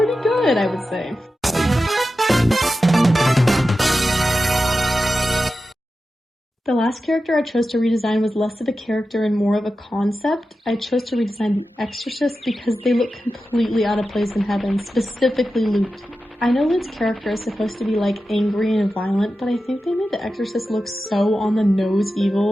good, I would say. The last character I chose to redesign was less of a character and more of a concept. I chose to redesign the Exorcist because they look completely out of place in heaven, specifically Luke. I know Luke's character is supposed to be like angry and violent, but I think they made the Exorcist look so on the nose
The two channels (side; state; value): both; normal; correlation 0.92